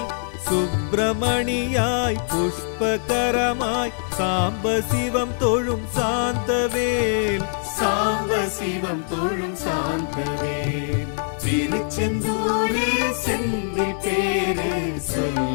சுப்பிரமணியாய் புஷ்பகரமாய் சாம்ப சிவம் தொழும் சாந்தவேல் சாம்ப சிவம் தொழும் சாந்தவேல் திருச்செந்தூரில் செந்தி பேரு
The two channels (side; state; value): right; silent; digital silence